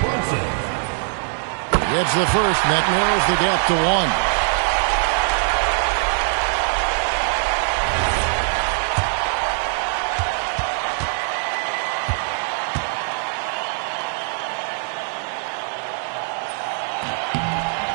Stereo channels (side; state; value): left; silent; 59 dB below the other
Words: Gets the first, and that narrows the gap to 1.